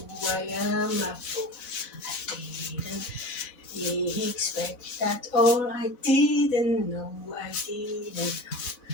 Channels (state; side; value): late; right; 4.0 ms